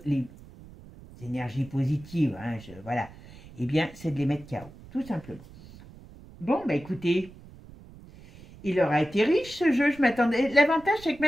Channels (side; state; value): right; noise; rumble, 20 dB below the sound